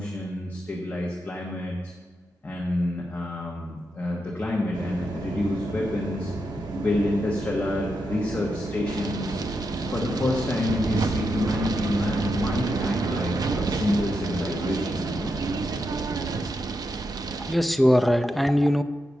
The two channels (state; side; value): normal; both; correlation 0.85